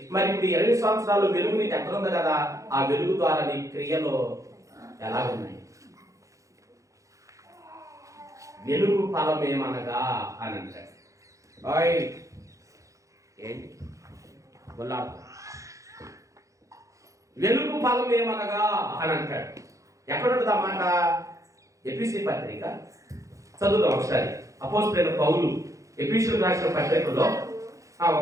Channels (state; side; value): late; left; 0.15 ms